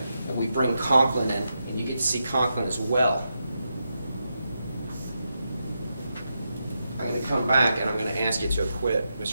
and we bring Conklin in, and you get to see Conklin as well, I'm going to come back and I'm going to ask you to acquit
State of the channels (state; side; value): inverted; both; correlation -0.86